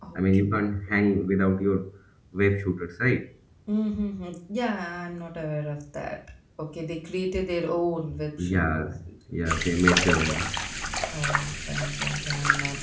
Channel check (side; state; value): both; identical; correlation 1.00